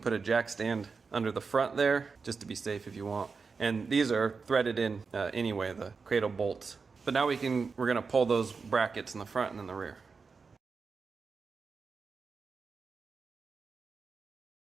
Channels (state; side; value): quieter; left; 4.9 dB